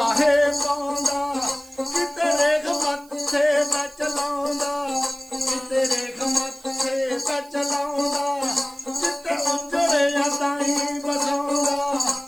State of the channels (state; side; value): noise; right; hiss, 26 dB below the sound